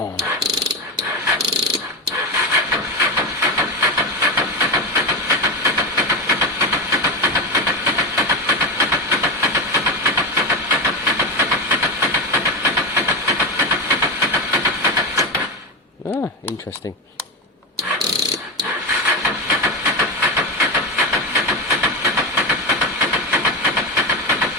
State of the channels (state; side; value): normal; both; correlation 0.15